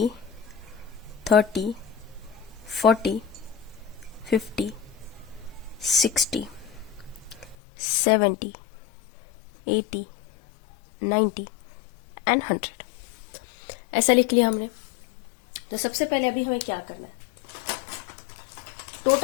30 40 50 60 70 80 90 एंड 100 ऐसा लिख लिया हमने। तो सबसे पहले अभी हमें क्या करना है,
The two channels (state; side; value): drops out; right; at 7.6 s